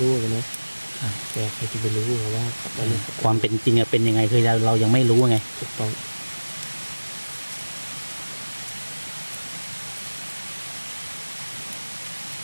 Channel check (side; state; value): both; inverted; correlation -1.00